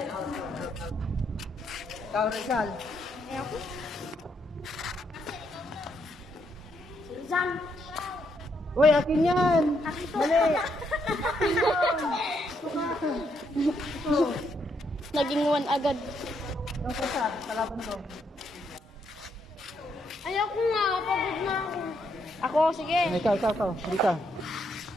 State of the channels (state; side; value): normal; both; correlation 0.76